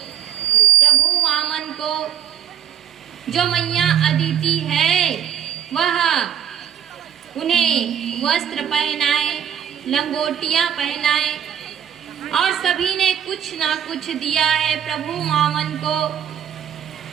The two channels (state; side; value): quieter; left; 9.1 dB